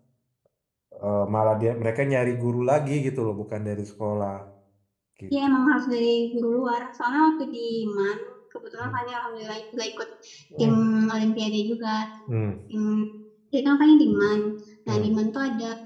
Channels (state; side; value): identical; both; correlation 1.00